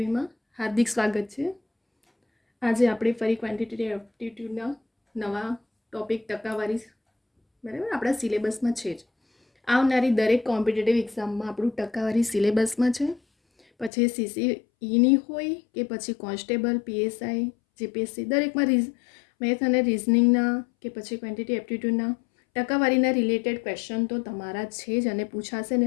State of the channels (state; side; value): drops out; right; at 13.9 s